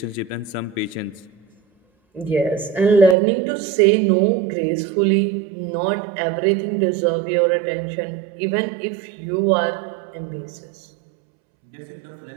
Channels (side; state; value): left; drops out; at 3.2 s